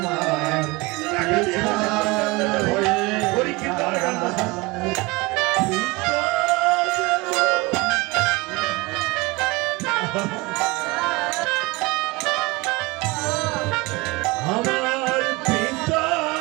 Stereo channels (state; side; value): quieter; left; 23.5 dB